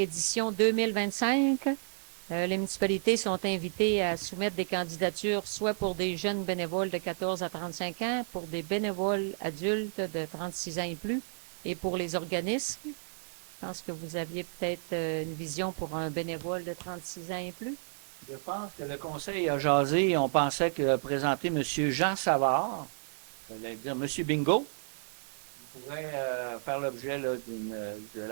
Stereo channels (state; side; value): silent; left; digital silence